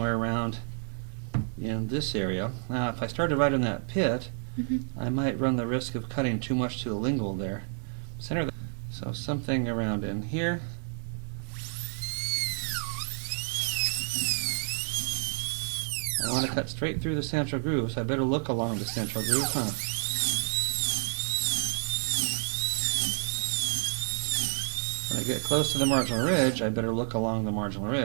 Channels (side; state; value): left; silent; 58 dB below the other